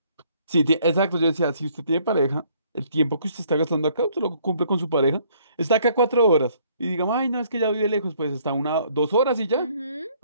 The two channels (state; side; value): inverted; both; correlation -0.63